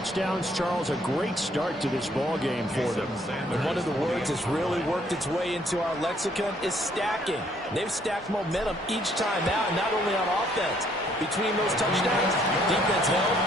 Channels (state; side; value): normal; both; correlation 0.65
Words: Charles, a great start to this ball game for them. And one of the words that's really worked its way into our lexicon is stacking. They've stacked momentum each time out, not only on offense. Between those touchdowns, defense held,